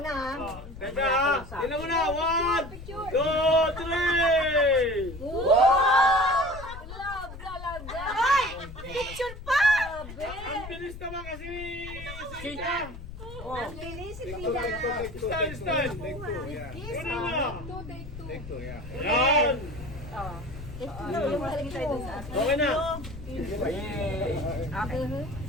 na ha. Teka, tingnan mo na. 1, 2, 3. Love talaga. Ay! Picture pa! Ang bilis naman kasi ni Sita. Ang bilis, si Tita. Stand. Una na. Yan. Okay na.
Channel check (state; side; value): noise; left; rumble, 12 dB below the sound